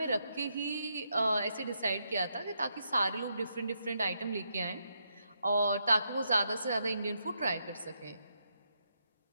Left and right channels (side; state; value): both; inverted; correlation -0.80